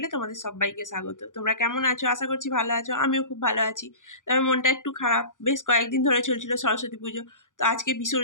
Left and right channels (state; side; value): late; right; 0.87 ms